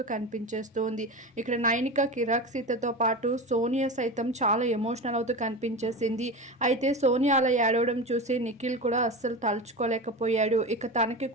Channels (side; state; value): both; normal; correlation 0.26